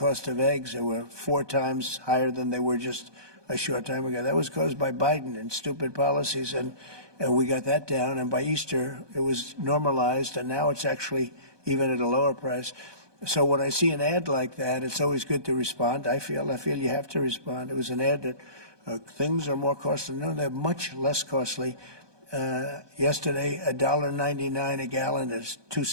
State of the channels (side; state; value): left; late; 1.2 ms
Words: of eggs. They were 4 times higher than they were just a short time ago. That was caused by Biden and stupid policies. And and we got that down, and by Easter it was normalized, and now it's actually even at a lower price. So when I see an ad like that, it's always good to respond. I feel you have to respond. It was an ad that things are more costly. No, they're much less costly. Yesterday, $1.99 a gallon. There's